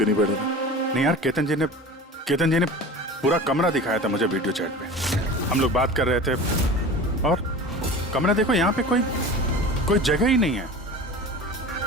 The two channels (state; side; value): normal; both; correlation 0.36